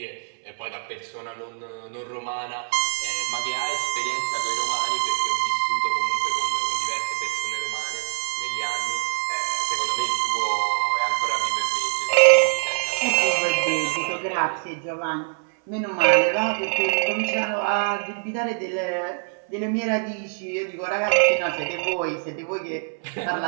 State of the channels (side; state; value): left; silent; 59 dB below the other